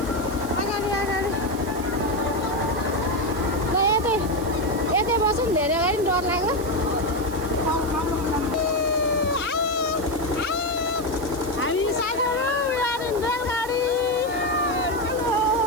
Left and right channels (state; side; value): noise; right; hiss, 16 dB below the sound